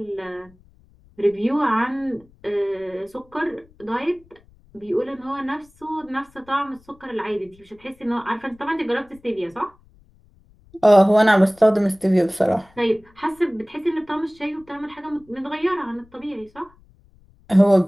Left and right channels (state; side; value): noise; left; rumble, 29 dB below the sound